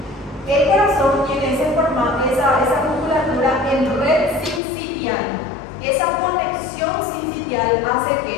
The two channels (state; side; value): drops out; right; at 4.6 s